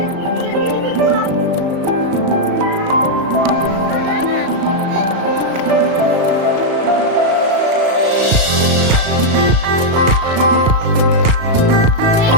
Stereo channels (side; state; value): left; late; 35 ms